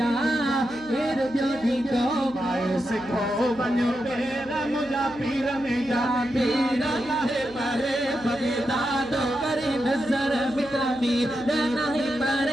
के रुबियो दो माए सिखो बनो तेरा मुझा पीर में जा पीर लाहे पारे बगदाद करे नजर मिटावी नहीं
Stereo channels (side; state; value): right; noise; hum, 20 dB below the sound